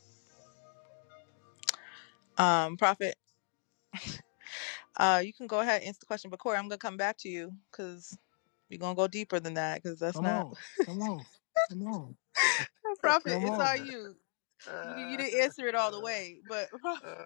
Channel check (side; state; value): right; silent; 54 dB below the other